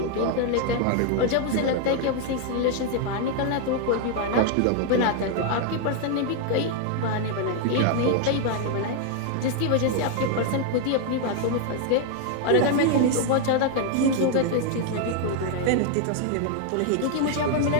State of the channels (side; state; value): both; different; correlation 0.00